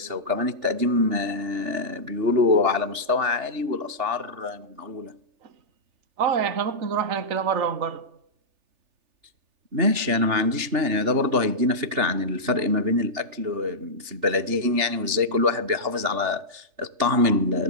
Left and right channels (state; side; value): late; left; 3.4 ms